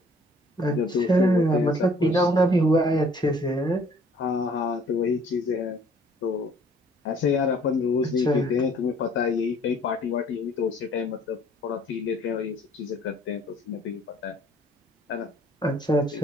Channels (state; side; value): normal; both; correlation 0.58